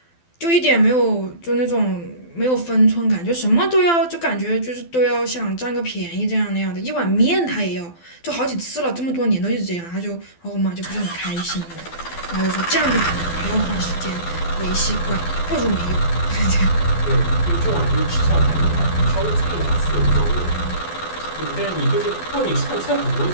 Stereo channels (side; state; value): right; late; 12 ms